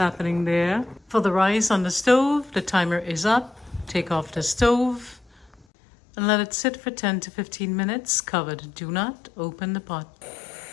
there. For the rice on the stove, the timer is up. Take off the stove and let it sit for 10 to 15 minutes covered. Do not open the pot.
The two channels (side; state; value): right; drops out; at 5.7 s